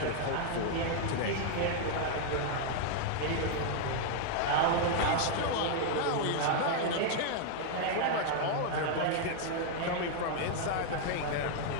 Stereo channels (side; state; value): both; different; correlation 0.00